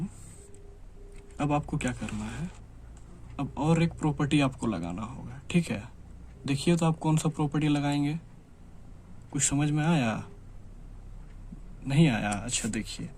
अब आपको क्या करना है, अब और एक प्रॉपर्टी आपको लगाना होगा। ठीक है, देखिए तो आप कौन सा प्रॉपर्टी लगाएंगे, कुछ समझ में आया? नहीं आया? अच्छा देखिए,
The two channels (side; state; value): both; identical; correlation 1.00